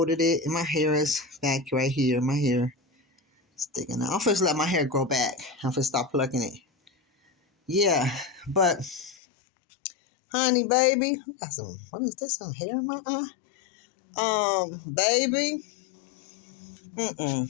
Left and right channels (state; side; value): drops out; right; at 9.2 s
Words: it, and my hair is back right here. My hair sticking out. I'm supposed to let my hair grow back. I'm supposed to stop plucking it. Yeah, but honey, baby, what is this? Some hair in my eye? Baby,